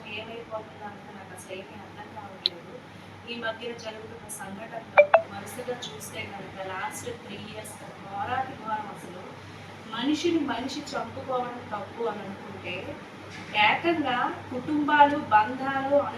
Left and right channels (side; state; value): both; identical; correlation 1.00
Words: ఏమైపోతుందో అంటే నాకు అసలు ఏమీ అర్థం కావట్లేదు. ఈ మధ్యన జరుగుతున్న సంఘటనలు వరుసగా చూస్తే కనుక లాస్ట్ 3 years ఘోరాతి ఘోరం. అసలు మనిషిని మనిషి చంపుకోవడం తప్పు అని అనుకుంటే ఏకంగా కుటుంబాలు, బంధాలు,